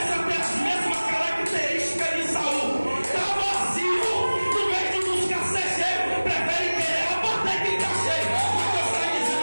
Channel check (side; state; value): both; inverted; correlation -1.00